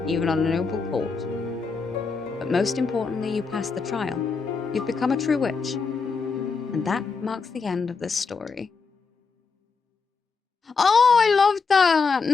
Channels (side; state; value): right; quieter; 4.8 dB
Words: even on a noble court. But most importantly, you passed the trial. You've become a true witch. And that marks the end of this story. Oh, I love that!